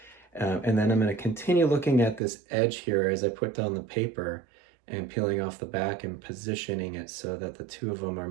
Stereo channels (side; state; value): left; drops out; at 2.2 s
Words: And then I'm going to continue looking at this edge here as I put down the paper and peeling off the back and positioning it so that the two of them are